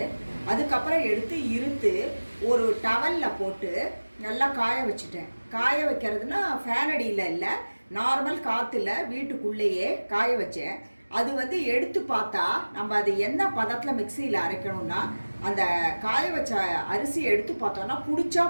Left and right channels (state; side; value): inverted; both; correlation -1.00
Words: அதுக்கப்புறம் எடுத்து இருத்து ஒரு டவலில் போட்டு நல்லா காய வச்சுட்டேன். காய வைக்கிறதுனா ஃபேன் அடியில் இல்லை, நார்மல் காற்றுல வீட்டுக்குள்ளேயே காய வச்சேன். அது எடுத்து பார்த்தா நம்ம அது என்ன பதத்தில் மிக்சியில் அரைக்கணும்னா அந்த காய வச்ச அரிசி எடுத்து பார்த்தோன்னா பிடிச்சா